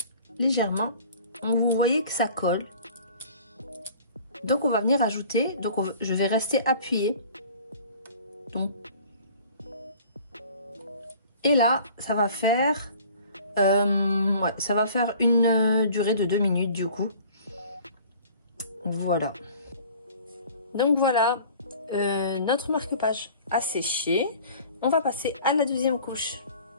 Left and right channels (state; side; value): inverted; both; correlation -0.48